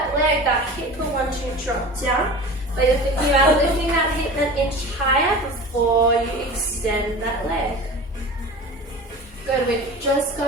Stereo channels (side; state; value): both; normal; correlation 0.35